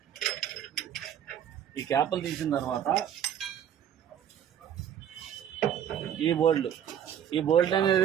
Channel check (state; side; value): quieter; left; 9.5 dB